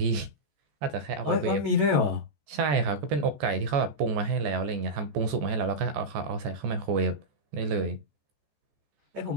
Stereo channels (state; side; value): late; left; 14 ms